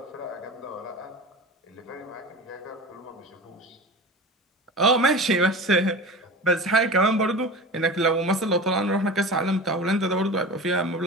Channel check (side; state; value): both; normal; correlation 0.33